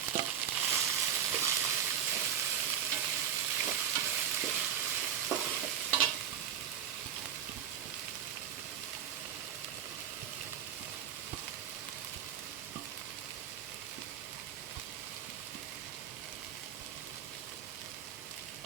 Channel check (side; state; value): left; quieter; 8.8 dB